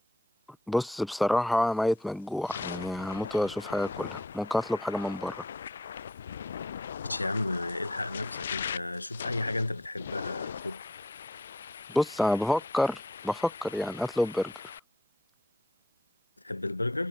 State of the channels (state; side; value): normal; both; correlation 0.57